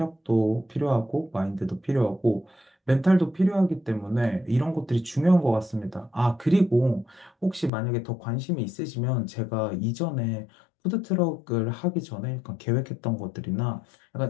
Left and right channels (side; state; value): right; drops out; at 7.7 s